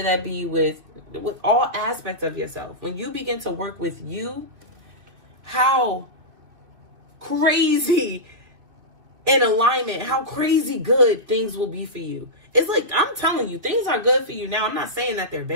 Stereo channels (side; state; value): left; late; 2.5 ms